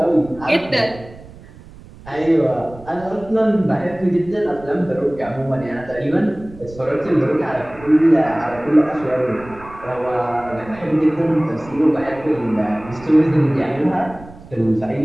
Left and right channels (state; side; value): noise; right; rumble, 19 dB below the sound